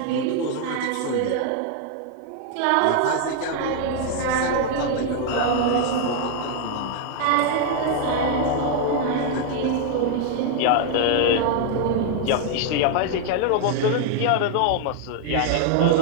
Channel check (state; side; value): different; both; correlation 0.00